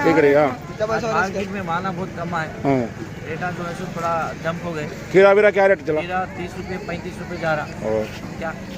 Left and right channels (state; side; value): identical; both; correlation 1.00